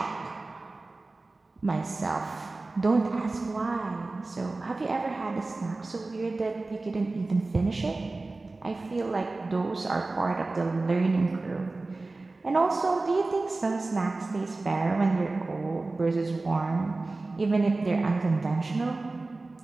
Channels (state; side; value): quieter; left; 3.3 dB